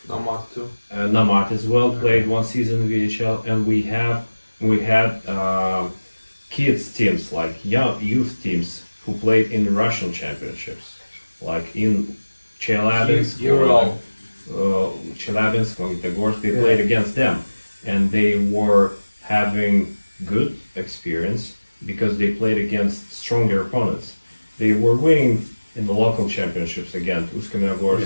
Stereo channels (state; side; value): inverted; both; correlation -1.00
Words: Nomad too. Nomad as well played 1 season in VHL, and we had kids teams, like youth teams who played in the Russian championships, like in Chelyabinsk, Magnitogorsk. They played against them, and they were having good experience because they played against stronger opponents. They were winning in the local championships against